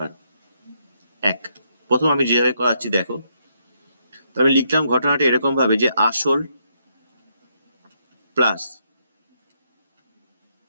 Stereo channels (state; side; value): inverted; both; correlation -0.76